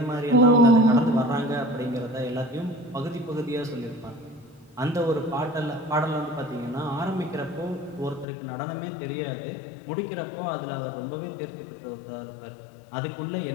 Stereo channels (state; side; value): drops out; right; at 8.2 s